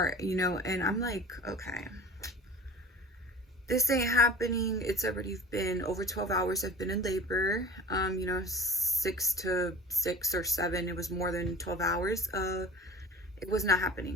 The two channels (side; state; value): both; normal; correlation 0.40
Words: and I'm like, okay, this ain't happening. It's already been over 12 hours. I've been in labor, you know, 6 to 6 or 7. It was more than 12 hours. It was not